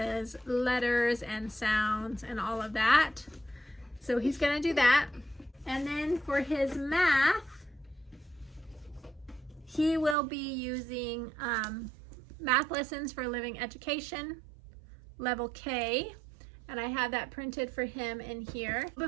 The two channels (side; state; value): left; drops out; at 10.2 s